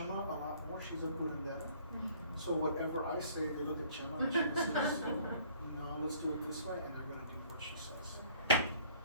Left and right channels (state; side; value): inverted; both; correlation -0.56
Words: a lot more. She's a curandera. So whatever I say, they look at Chema and she says, no, let's do it this way, and they're gonna do what she says. Okay?